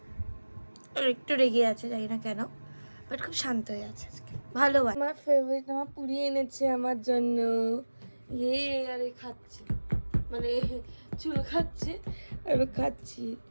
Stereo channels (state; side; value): inverted; both; correlation -1.00